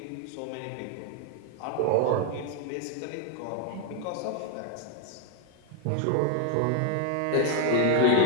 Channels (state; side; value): different; both; correlation 0.00